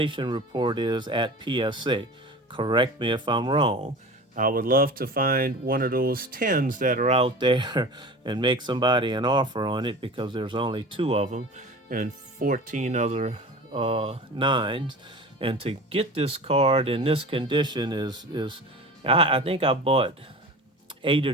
report is at PSA. Correct me if I'm wrong. I would love to find one of those 10s that are out there and make somebody an offer on it, because there's only 2 of them and 14 other 9s. And to get this card in this condition I think I bought 8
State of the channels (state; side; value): normal; both; correlation 0.36